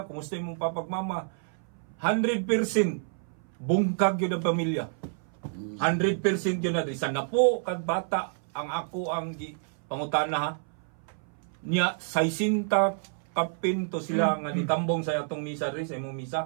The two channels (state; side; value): silent; left; 57 dB below the other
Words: kumusta yung papag mama, 100% bungkag yun ang pamilya. 100% yun na rin. Sana po kag bata ang ako ang pangutana ha. Niya 60 kapinto sila nga nitambong sa atong misa rin, sa imong